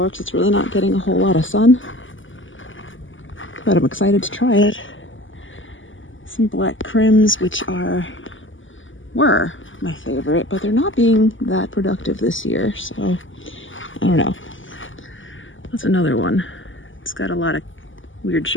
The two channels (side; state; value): right; late; 0.57 ms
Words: because it's really not getting a whole lot of sun. But I'm excited to try it. Some black crims, which were my favorite, but they're not being that productive this year, so I don't know. That's another one. It's got a lot of weird